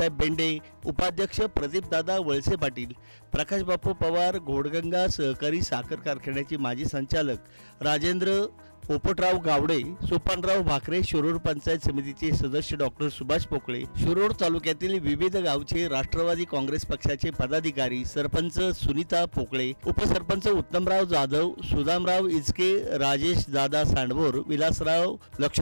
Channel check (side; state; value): both; inverted; correlation -1.00